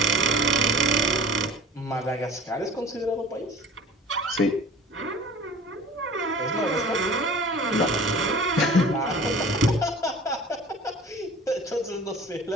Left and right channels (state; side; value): normal; both; correlation 0.44